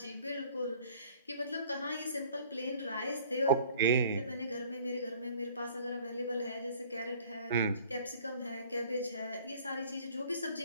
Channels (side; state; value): both; inverted; correlation -0.52